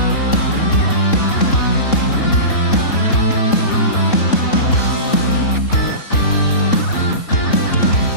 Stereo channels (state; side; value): late; right; 3.8 ms